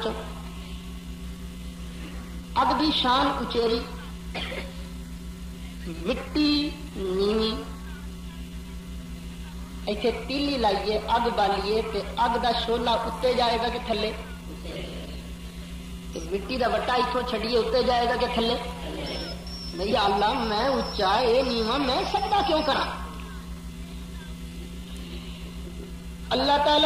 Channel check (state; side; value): identical; both; correlation 1.00